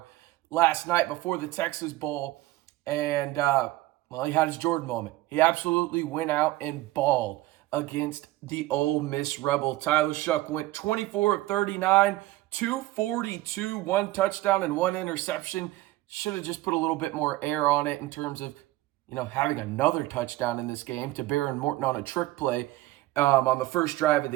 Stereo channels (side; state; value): left; quieter; 17.3 dB